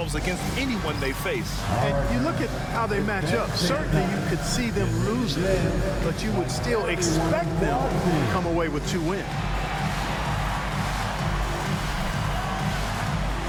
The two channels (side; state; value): both; identical; correlation 1.00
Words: against anyone they face. And you look at how they match up. Certainly you could see them losing, but you would still expect them to come away with 2 wins.